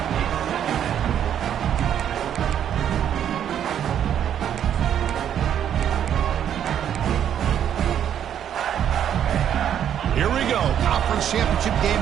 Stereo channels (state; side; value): quieter; left; 9.6 dB